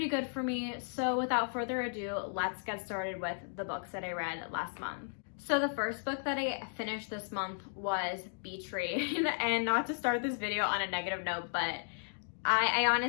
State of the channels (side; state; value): right; silent; digital silence